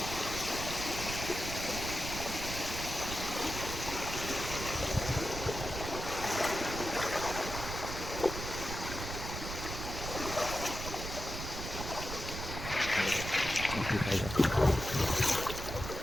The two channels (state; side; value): noise; right; rumble, 6 dB below the sound